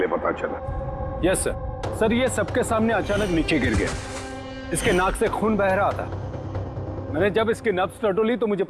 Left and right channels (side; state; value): both; identical; correlation 1.00